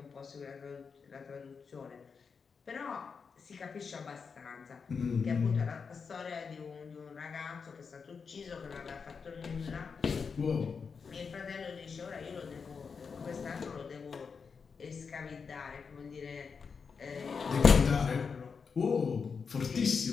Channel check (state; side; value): quieter; right; 5.6 dB